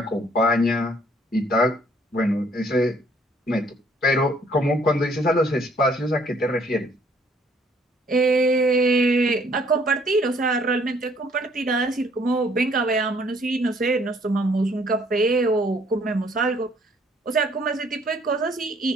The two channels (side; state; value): both; normal; correlation 0.62